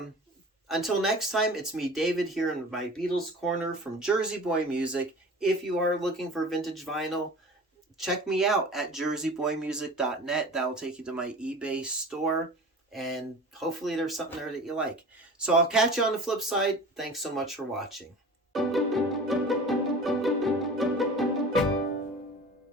until next time, it's me, David, here in my Beatles Corner from Jersey Boy Music. If you are looking for vintage vinyl, check me out at jerseyboymusic.net. That will take you to my eBay store, and hopefully there's something there that you like. So I'll catch you on the flip side. Thanks so much for watching.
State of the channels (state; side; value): normal; both; correlation 0.39